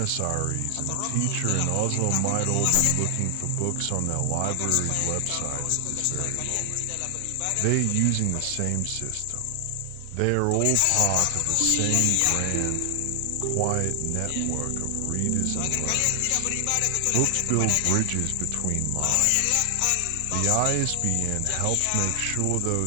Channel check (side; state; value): both; different; correlation 0.00